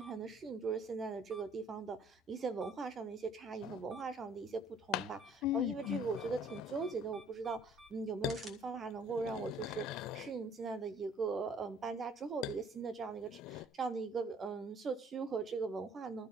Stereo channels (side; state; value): both; normal; correlation 0.57